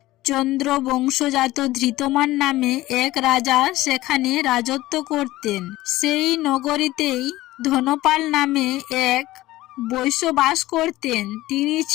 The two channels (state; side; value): quieter; right; 17.1 dB